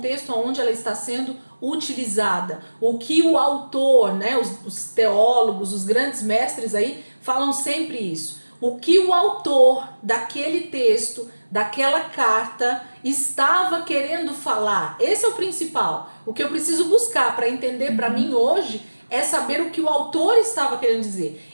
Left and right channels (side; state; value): both; inverted; correlation -1.00